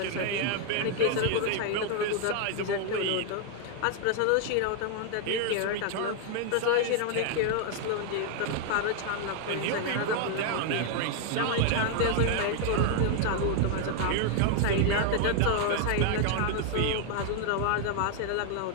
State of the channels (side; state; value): both; different; correlation 0.00